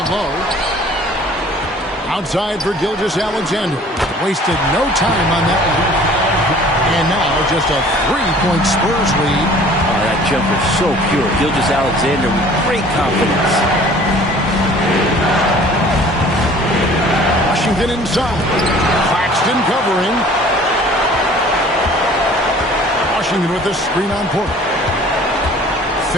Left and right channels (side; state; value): both; normal; correlation 0.50